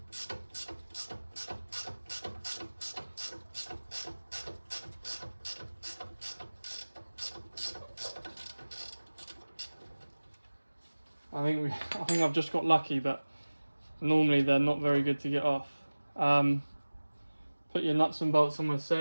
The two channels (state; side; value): inverted; both; correlation -1.00